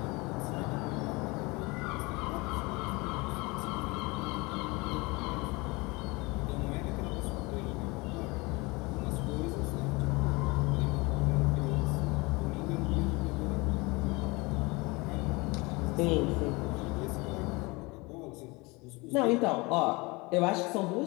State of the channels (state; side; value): quieter; right; 25.2 dB